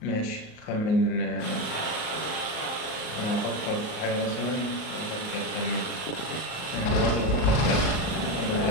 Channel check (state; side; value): late; right; 38 ms